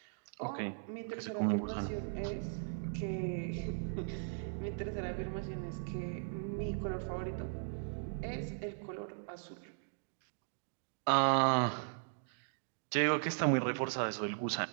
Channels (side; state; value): left; silent; digital silence